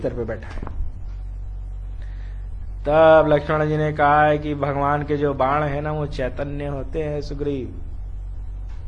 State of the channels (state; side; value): identical; both; correlation 1.00